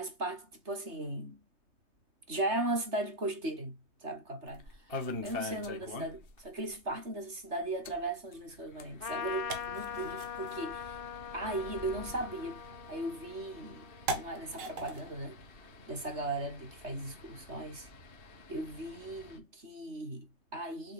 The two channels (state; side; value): late; left; 3.3 ms